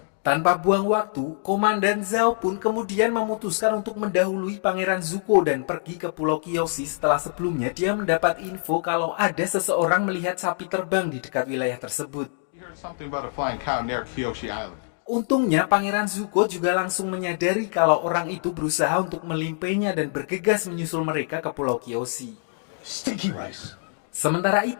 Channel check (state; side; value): silent; right; digital silence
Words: Tanpa buang waktu, Komandan Zhao pun kemudian memutuskan untuk mendahului Pangeran Zuko dan pergi ke Pulau Kyoshi setelah sebelumnya dia mendapat info kalau ada seseorang melihat sapi terbang di dekat wilayah tersebut. He heard something about a flying cow near Kyoshi Island. Untungnya Pangeran Zuko juga langsung menyadari kalau orang itu berusaha untuk melimpainya dan bergegas menyusul mereka ke Pulau Kyoshi. Sticky rice. Sementara